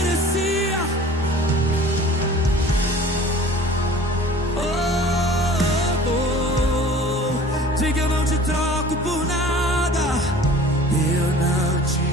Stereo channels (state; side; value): normal; both; correlation 0.46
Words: Diga, eu não te troco por nada. Eu não te